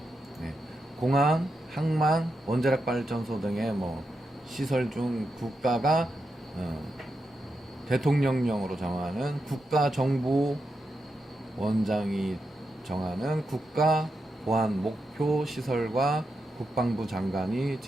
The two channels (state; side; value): normal; both; correlation 0.86